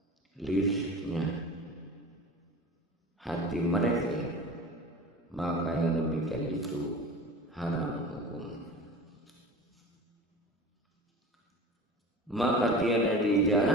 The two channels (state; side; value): normal; both; correlation 0.35